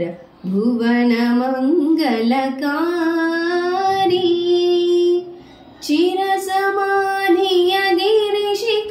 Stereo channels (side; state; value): both; identical; correlation 1.00